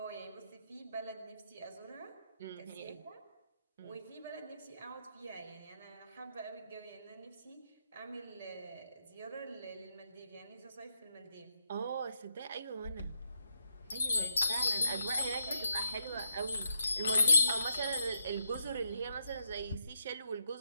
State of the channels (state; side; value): inverted; both; correlation -0.78